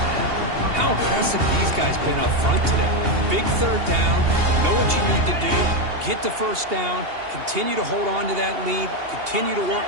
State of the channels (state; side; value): late; left; 2.8 ms